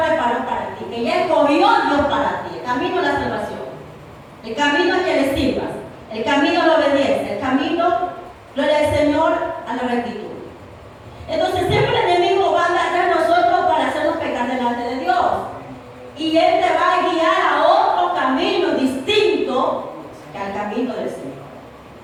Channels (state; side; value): identical; both; correlation 1.00